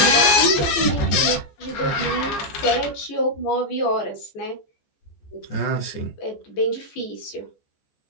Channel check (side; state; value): right; late; 15 ms